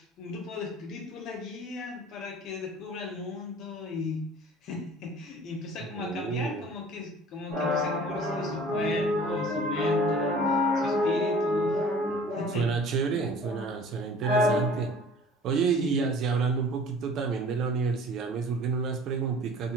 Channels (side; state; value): both; normal; correlation 0.47